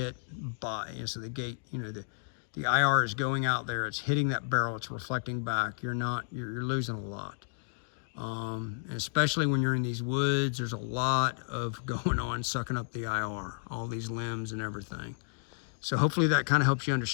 by, and so the gate, you know, the IR is going out there, it's hitting that barrel, it's reflecting back. You're losing a lot. Especially when you're in these woods, there's a lot of going on sucking up the IR, all these limbs and everything. So hopefully that kind of helps you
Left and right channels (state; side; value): silent; right; digital silence